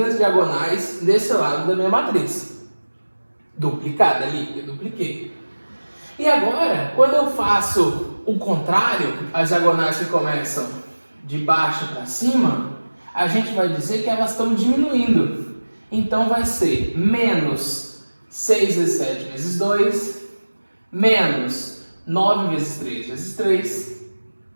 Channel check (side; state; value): both; inverted; correlation -1.00